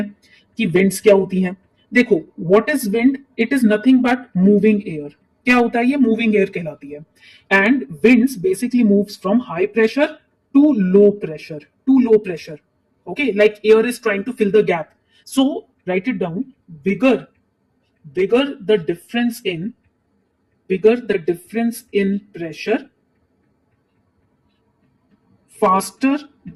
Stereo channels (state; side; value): identical; both; correlation 1.00